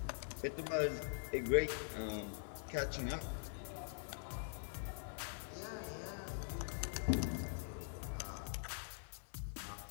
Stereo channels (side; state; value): right; silent; digital silence